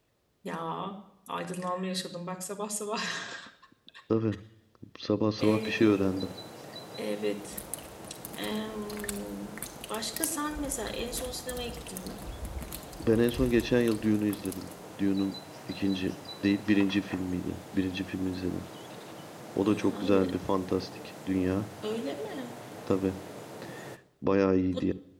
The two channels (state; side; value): identical; both; correlation 1.00